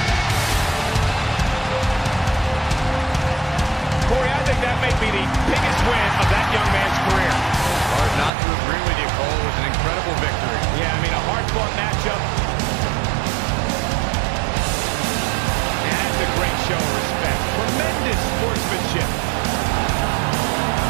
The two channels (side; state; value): left; drops out; at 8.3 s